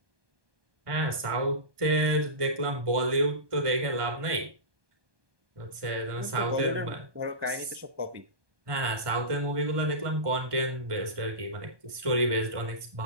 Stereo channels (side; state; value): left; late; 1.2 ms